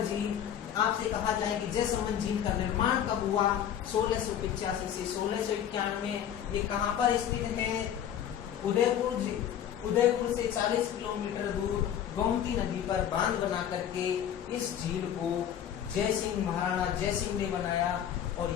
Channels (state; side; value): quieter; right; 9.7 dB